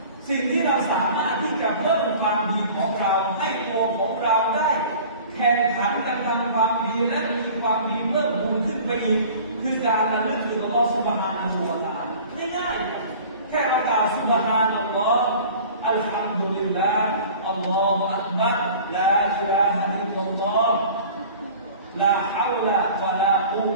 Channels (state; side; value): inverted; both; correlation -0.44